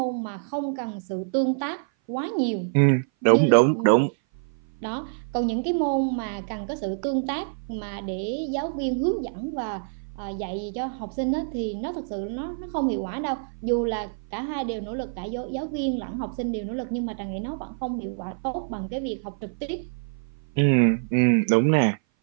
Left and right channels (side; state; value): left; silent; 57 dB below the other